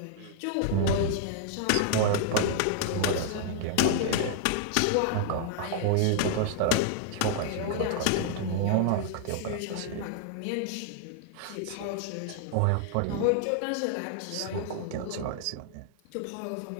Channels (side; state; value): both; different; correlation -0.01